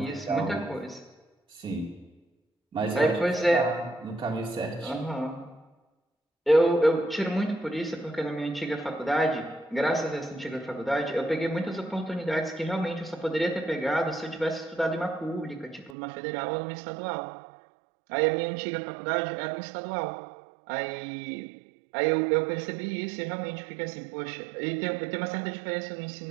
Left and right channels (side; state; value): left; drops out; at 16.0 s